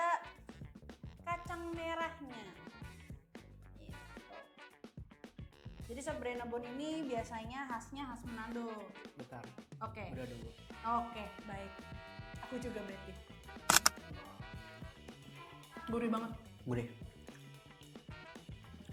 kacang merahnya. Gitu. Jadi sop Brennebo ini biasanya khasnya khas Manado. Bentar, Oke. udah dulu. Oke, baik. Aku juga berarti. Gurih banget. Gurih.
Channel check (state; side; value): identical; both; correlation 1.00